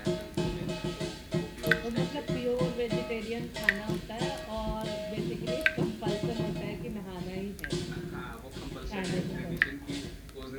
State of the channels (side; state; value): both; identical; correlation 1.00